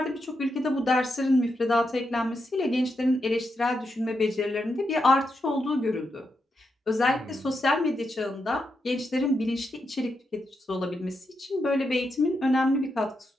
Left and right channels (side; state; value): both; normal; correlation 0.84